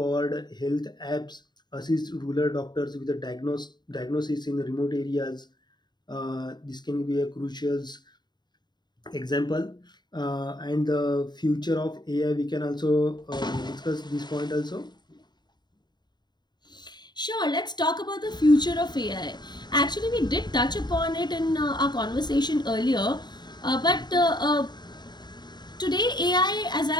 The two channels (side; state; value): right; late; 0.21 ms